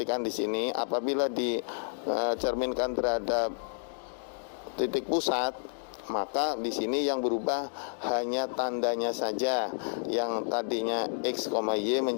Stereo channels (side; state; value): right; silent; digital silence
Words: di sini, apabila dicerminkan terhadap titik pusat, maka di sini yang berubah hanya tandanya saja. Yang tadinya X, Y